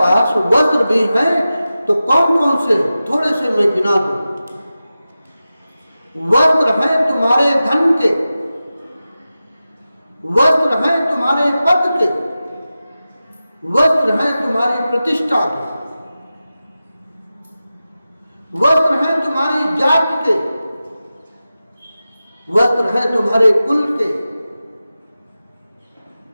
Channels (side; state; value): both; inverted; correlation -0.94